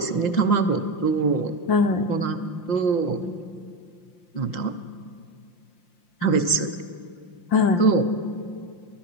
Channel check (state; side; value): late; right; 5.7 ms